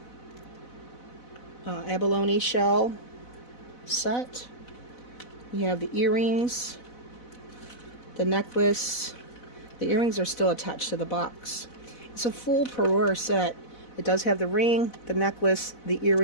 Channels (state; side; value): late; right; 4.0 ms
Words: abalone shell set. You have the earrings, the necklace. The earrings are still attached to the box. It's a full parure set. It does have the ring, the necklace, the